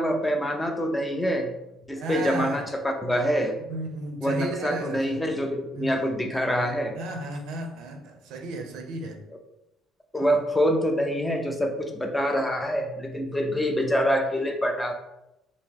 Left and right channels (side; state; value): both; normal; correlation 0.79